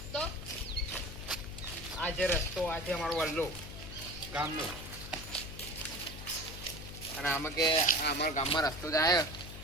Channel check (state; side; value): noise; left; hum, 11 dB below the sound